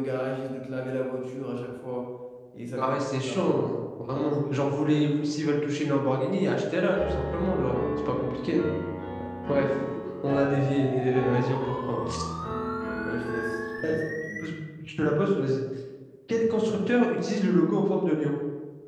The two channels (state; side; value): identical; both; correlation 1.00